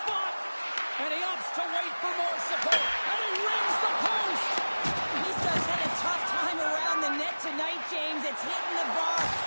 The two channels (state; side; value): inverted; both; correlation -1.00